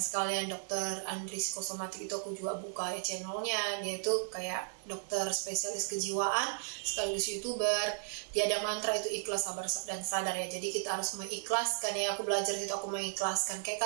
dokter Andris Kosomatik itu, aku juga buka ya channelnya. Dia itu kayak dokter spesialis kejiwaan sekaligus youtuber. Dia ada mantra itu ikhlas, sabar dan sadar ya. Jadi kita harus mengikhlaskan ya. Aku belajar itu, aku mengikhlaskan.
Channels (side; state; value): left; silent; digital silence